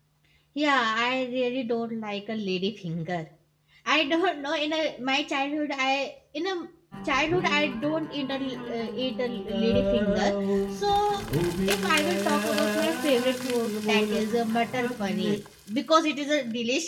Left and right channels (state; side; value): identical; both; correlation 1.00